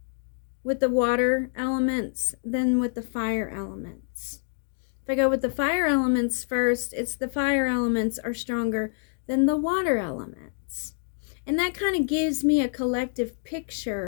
with the water elements than with the fire elements. If I go with the fire elements first, it's the fire elements are stronger than the water elements. And that kind of gives me a collective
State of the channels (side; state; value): right; silent; digital silence